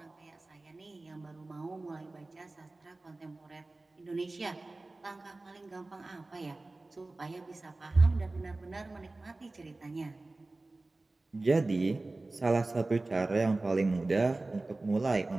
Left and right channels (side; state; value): left; quieter; 3.1 dB